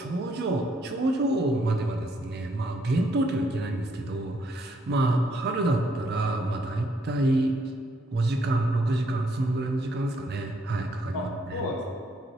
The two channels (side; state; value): both; normal; correlation 0.71